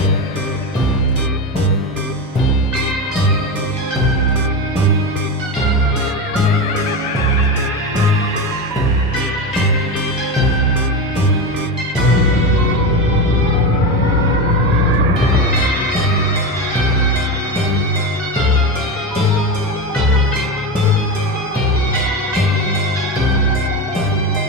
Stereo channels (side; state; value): both; normal; correlation 0.19